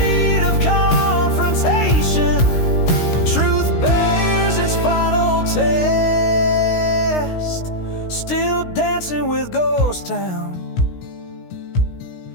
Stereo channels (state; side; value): late; right; 16 ms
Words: of confrontation, truth bears its final test. Still dancing with Ghost Town,